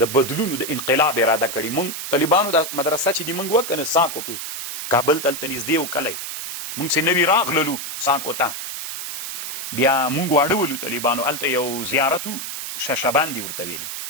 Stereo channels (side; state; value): right; noise; hiss, 6 dB below the sound